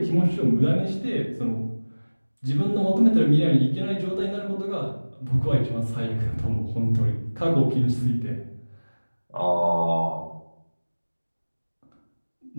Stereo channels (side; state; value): both; inverted; correlation -1.00